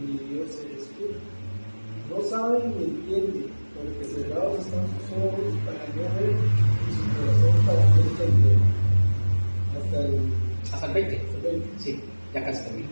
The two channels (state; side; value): inverted; both; correlation -1.00